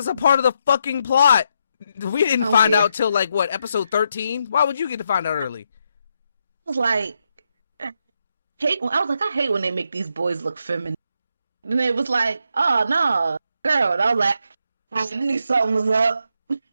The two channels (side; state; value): both; inverted; correlation -0.80